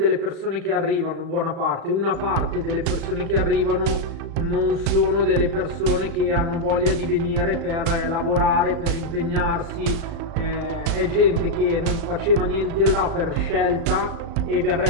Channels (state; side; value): late; left; 36 ms